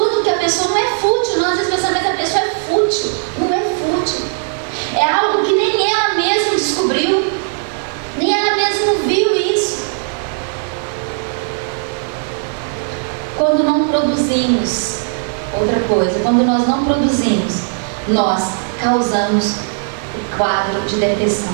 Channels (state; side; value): silent; left; 68 dB below the other